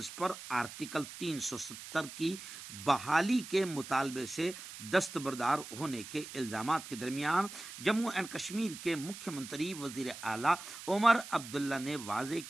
پر آرٹیکل 370 کی بحالی کے مطالبے سے دستبردار ہونے کے الزامات کے درمیان جموں اینڈ کشمیر کے مکھیہ منتری وزیر اعلیٰ عمر عبداللہ نے واضح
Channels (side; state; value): right; noise; hiss, 12 dB below the sound